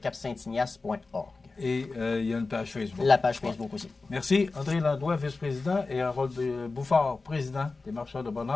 Et il y a une page Facebook. La page Facebook aussi. Merci. André Landois, vice-président, et Harold Bouffard, président des Marcheurs de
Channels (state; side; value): quieter; right; 3.8 dB